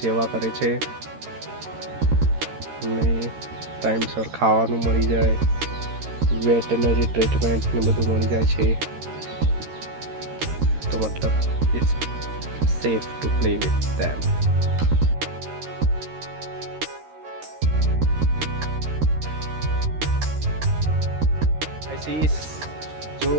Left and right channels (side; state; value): left; late; 13 ms